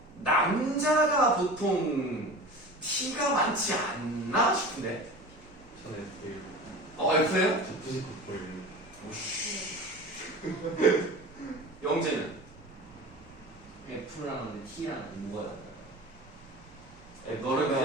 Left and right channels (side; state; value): right; noise; hum, 26 dB below the sound